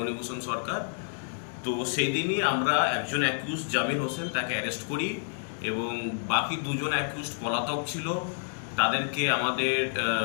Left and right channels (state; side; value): silent; right; digital silence